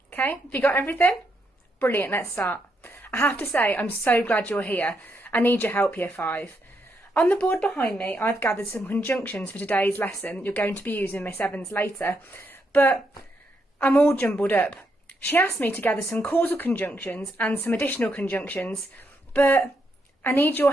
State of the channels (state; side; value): normal; both; correlation 0.79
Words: Okay, have you got everything? Brilliant, let's start. I have to say I'm so glad you're here. I need your help Year 5. On the board behind me I've gathered some conjunctions for today's lesson you're going to be using Miss Evans later, but I'm all jumbled up. She asked me to gather some causal conjunctions and some additional conjunctions, but I need your